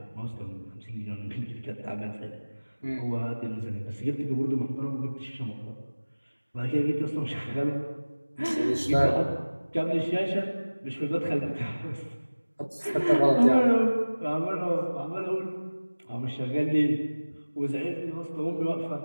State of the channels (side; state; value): both; inverted; correlation -1.00